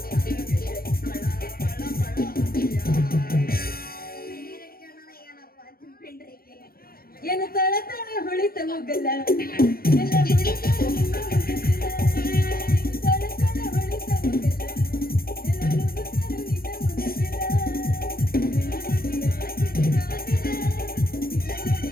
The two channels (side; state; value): right; late; 0.44 ms